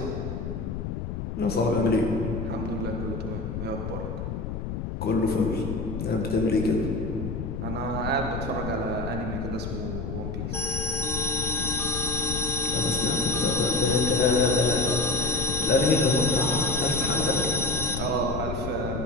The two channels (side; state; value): left; noise; rumble, 5 dB below the sound